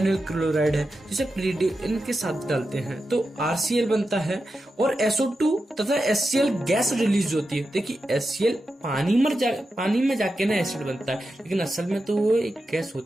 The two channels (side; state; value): both; normal; correlation 0.89